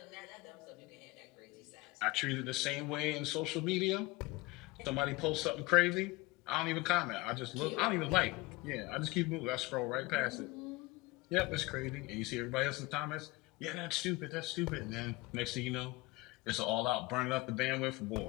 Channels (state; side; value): quieter; right; 21.7 dB